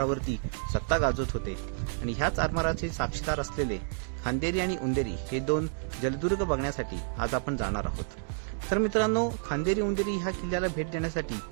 सत्ता गाजवत होते आणि ह्याच आरमाराचे साक्षीदार असलेले खांदेरी आणि उंदेरी हे दोन जलदुर्ग बघण्यासाठी आज आपण जाणार आहोत। तर मित्रांनो, खांदेरी उंदेरी ह्या किल्ल्याला भेट देण्यासाठी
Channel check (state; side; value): silent; left; digital silence